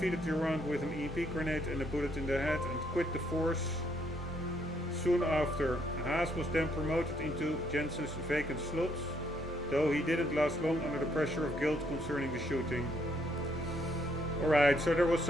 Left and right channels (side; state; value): both; normal; correlation 0.71